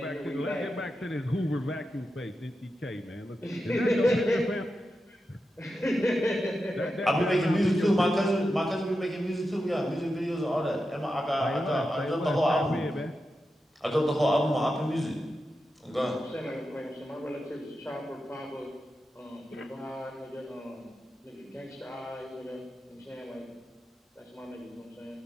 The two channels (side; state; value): both; normal; correlation 0.89